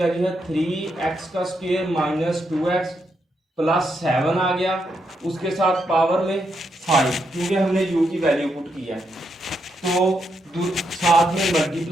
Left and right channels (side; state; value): both; normal; correlation 0.80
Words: है 3x का स्क्वायर माइनस 2x प्लस 7 आ गया, उसके साथ पावर में 5 क्योंकि हमने u की वैल्यू पुट किया है। तो साथ में